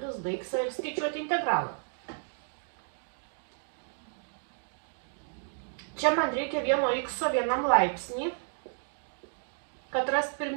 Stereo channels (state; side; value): silent; left; digital silence